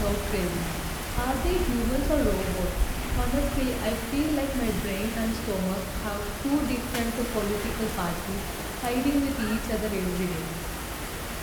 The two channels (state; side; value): identical; both; correlation 1.00